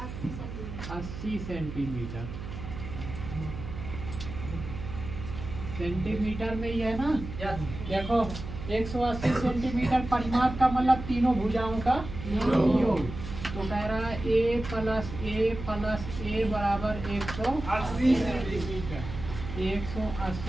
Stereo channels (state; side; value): noise; right; hum, 9 dB below the sound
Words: सेंटीमीटर। सेंटीमीटर में ही है ना? देखो 180 सेंटीमीटर परिमाप का मतलब तीनों भुजाओं का योग। तो कह रहा है a प्लस a बराबर 180 सेंटीमीटर।